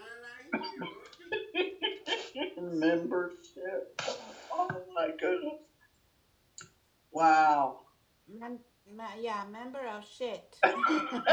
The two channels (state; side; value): identical; both; correlation 1.00